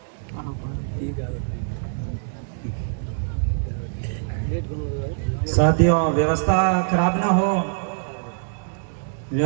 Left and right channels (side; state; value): left; silent; digital silence